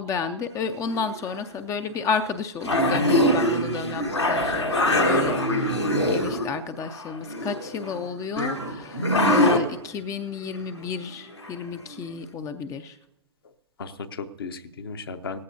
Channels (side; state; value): both; normal; correlation -0.02